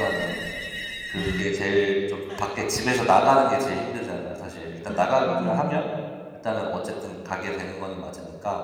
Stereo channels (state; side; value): identical; both; correlation 1.00